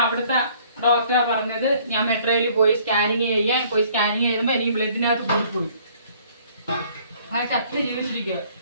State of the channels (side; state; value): both; inverted; correlation -0.58